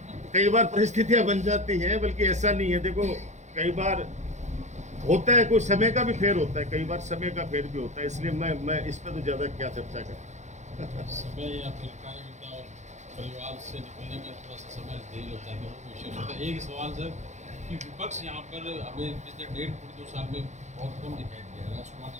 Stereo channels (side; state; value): left; late; 0.34 ms